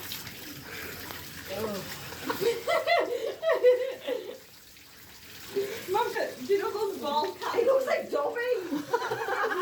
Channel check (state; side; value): identical; both; correlation 1.00